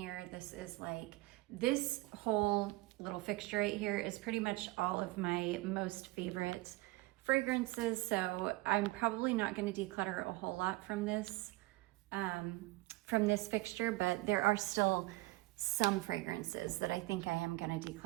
This is like, this whole little fixture right here is pretty much all of my most favorite fragrances. So I'm probably not going to declutter a whole lot from this fixture, but there are still some fragrances that I think I am going to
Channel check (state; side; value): quieter; left; 20.8 dB